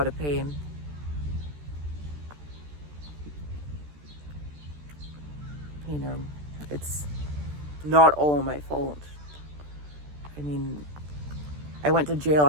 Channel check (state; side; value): late; left; 14 ms